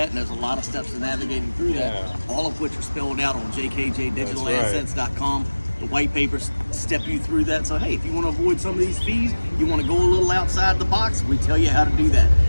and there's a lot of steps to navigating through that, all of which are spelled out on jkjdigitalassets.com. The white papers step you through that. So hey, if you want to avoid some of these fees, you want to go a little outside the box, we tell you how to do that.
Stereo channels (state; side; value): inverted; both; correlation -1.00